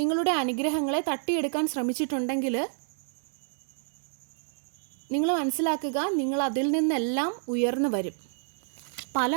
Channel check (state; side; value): silent; left; digital silence